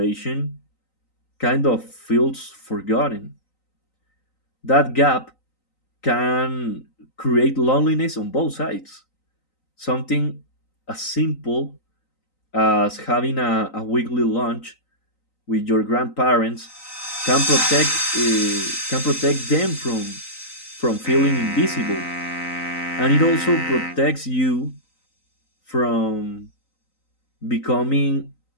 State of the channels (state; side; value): late; right; 3.9 ms